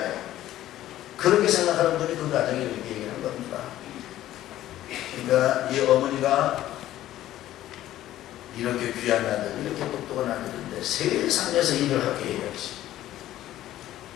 그렇게 생각하는 분이 그 가정에 이렇게 얘기하는 겁니다. 그러니까 이 어머니가 이렇게 귀한 아들, 이렇게 똑똑한 아들인데 세상에서 일을 하게 해야지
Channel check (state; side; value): quieter; right; 13.7 dB